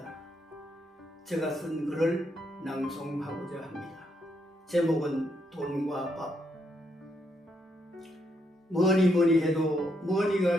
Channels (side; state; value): both; normal; correlation 0.77